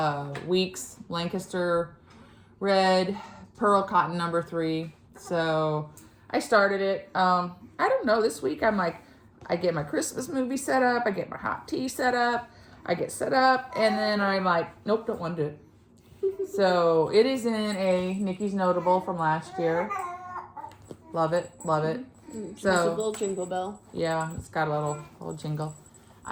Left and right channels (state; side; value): identical; both; correlation 1.00